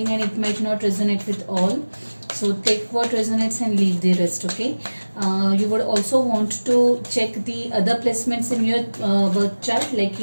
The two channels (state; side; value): inverted; both; correlation -1.00